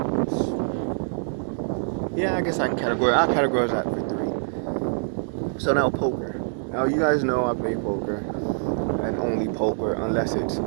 I guess I categorize that for 3. So now poker. Now you guys know I play poker, and only poker unless it's,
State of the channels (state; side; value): silent; left; digital silence